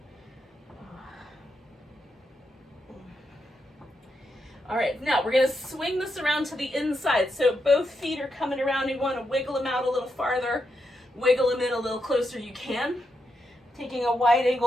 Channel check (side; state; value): both; normal; correlation 0.83